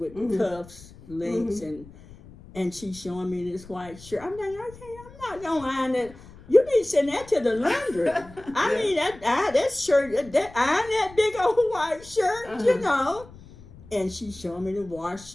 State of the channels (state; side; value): noise; left; rumble, 20 dB below the sound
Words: cuffs, links, and she's showing me this white shirt. I'm like, okay, I'm not gonna iron that. You need to send that to the laundry. I mean, that shirt, iron that big old white shirt, you know. And she's showing me the